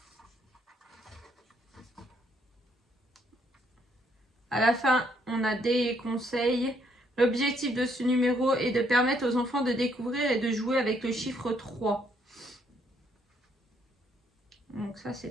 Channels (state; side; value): normal; both; correlation 0.70